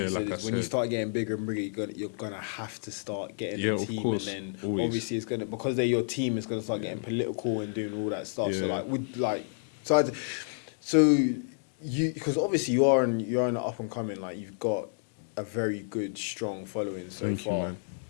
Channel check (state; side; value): silent; right; digital silence